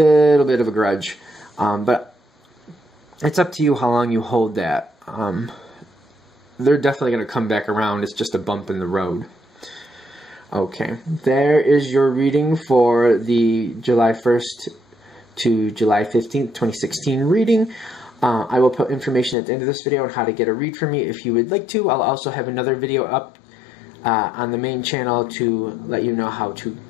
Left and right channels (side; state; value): right; drops out; at 19.4 s